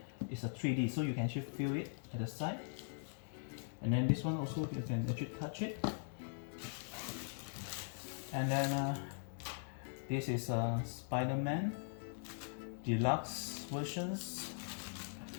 It's a 3D, so you can actually feel it at the side. And then this one also, you can actually touch it. And then this is Spider-Man deluxe versions,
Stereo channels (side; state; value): right; silent; digital silence